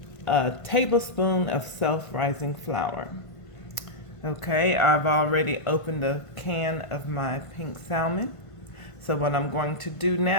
tablespoon of self-rising flour. Okay, I've already opened a can of my pink salmon. So what I'm going to do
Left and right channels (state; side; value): late; right; 1.5 ms